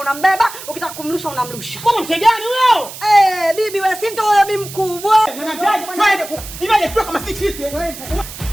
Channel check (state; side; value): noise; right; hiss, 13 dB below the sound